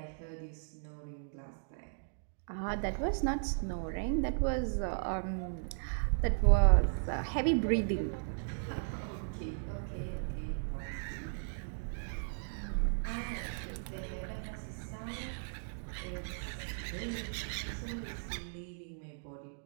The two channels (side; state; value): left; silent; digital silence